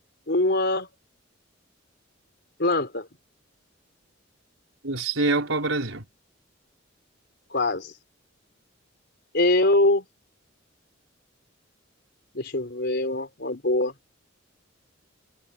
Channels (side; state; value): both; normal; correlation -0.01